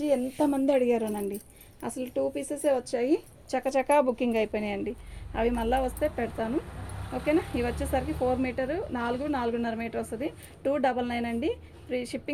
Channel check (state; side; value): identical; both; correlation 1.00